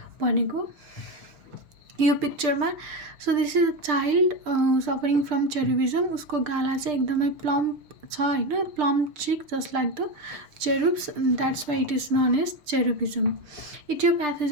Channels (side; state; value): left; late; 6.2 ms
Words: भनेको यो पिक्चरमा. So this is a child suffering from cherubism. उसको गाला चाहिँ एकदमै प्लम्प छ होइन, plump cheek just like the cherubs, that's why it is known as cherubism.